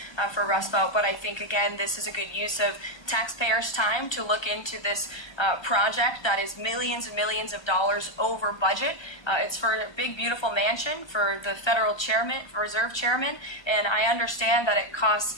for Rumsfeld, but I think, again, this is a good use of taxpayers' time to look into this project that is millions and millions of dollars over budget. It's for a big, beautiful mansion for the federal chairman, reserve chairman, and I understand that it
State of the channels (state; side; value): late; right; 1.3 ms